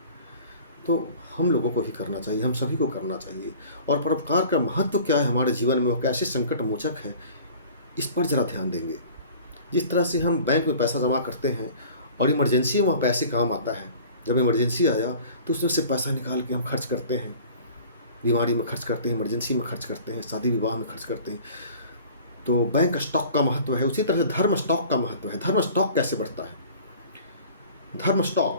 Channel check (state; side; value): inverted; both; correlation -0.46